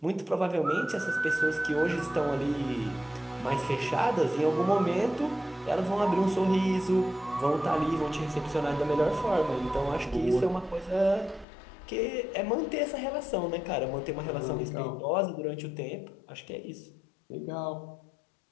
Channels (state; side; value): drops out; right; at 11.5 s